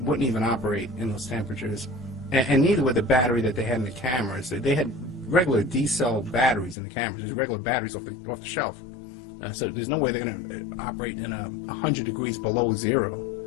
wouldn't even operate in those temperatures. And neither would the battery that they had in the cameras. They had regular D-cell batteries in the cameras. There's regular batteries off the shelf. So there's no way they're going to operate in 100 degrees below zero.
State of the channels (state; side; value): drops out; right; at 6.8 s